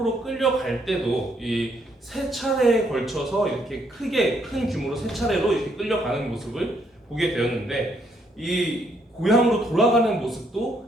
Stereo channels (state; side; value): normal; both; correlation 0.72